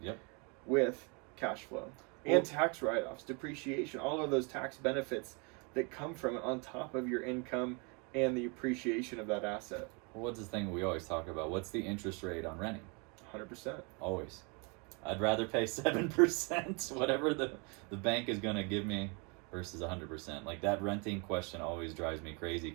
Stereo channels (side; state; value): left; quieter; 32.8 dB